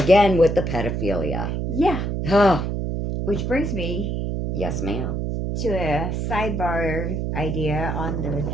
with the pedophilia. Yeah. Oh, Which brings me yes, ma'am. to a sidebar idea on the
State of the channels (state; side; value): noise; right; hum, 2 dB below the sound